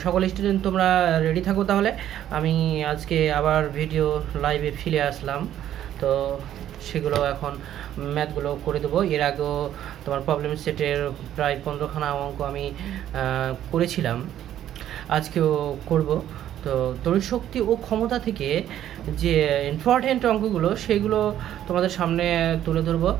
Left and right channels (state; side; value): quieter; left; 11.5 dB